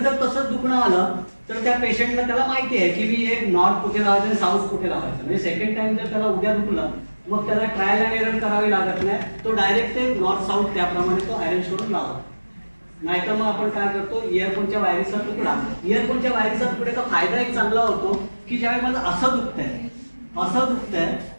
जर तसंच दुखणं आलं तर त्या पेशंटला त्याला माहिती आहे की मी हे नॉर्थ कुठे लावायचं आणि साऊथ कुठे लावायचं. म्हणजे सेकंड टाइम जर त्याला उद्या दुखलं मग त्याला ट्रायल अँड एरर करावी लागत नाही, तो डायरेक्ट ते नॉर्थ साऊथ त्याप्रमाणे तो अरेंज करून लावतो. नाहीतर मग आपण काय करतो, इयरफोनच्या वायरीचा तुकड्याचा फायदा एक चांगला होतो की ज्यावेळी मला असं दुखतंय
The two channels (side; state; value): both; inverted; correlation -1.00